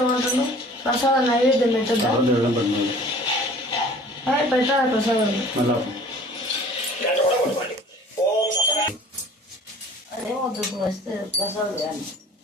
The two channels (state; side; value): normal; both; correlation 0.48